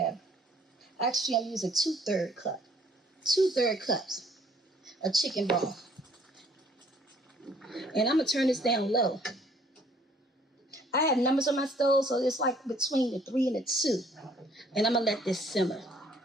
actually I'm using 2/3 cup. 2/3 cups of chicken broth. And I'm gonna turn this down low. I have numbers on my stove, so it's like between the 3 and the 2. And I'm gonna let this simmer.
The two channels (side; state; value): both; normal; correlation 0.60